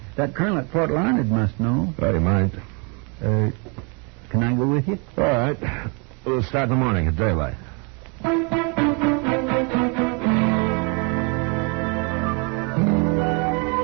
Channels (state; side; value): quieter; left; 32.2 dB